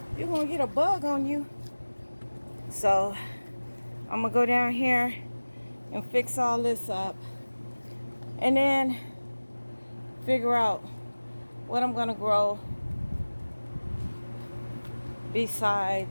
You're gonna get a bug on you. So I'm gonna go down here and fix all this up. And then figure out what I'm gonna grow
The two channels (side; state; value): both; inverted; correlation -1.00